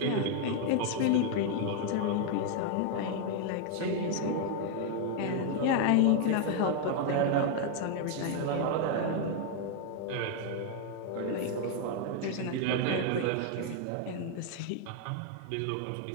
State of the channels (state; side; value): different; both; correlation 0.00